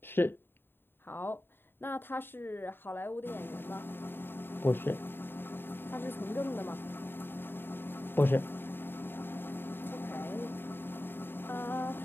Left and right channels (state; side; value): late; right; 0.10 ms